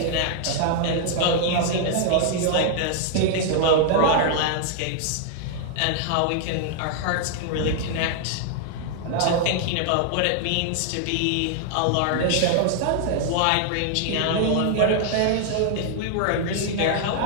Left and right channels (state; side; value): different; both; correlation 0.00